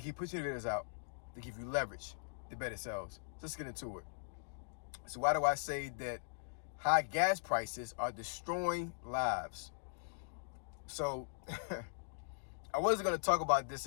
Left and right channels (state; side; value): silent; right; digital silence